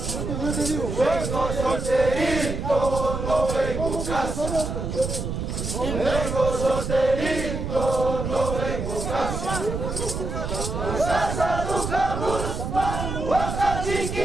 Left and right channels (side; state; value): right; noise; rumble, 4 dB below the sound